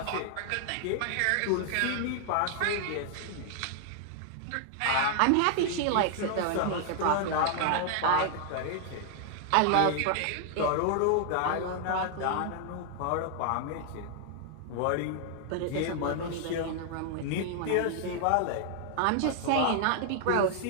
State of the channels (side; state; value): both; different; correlation 0.00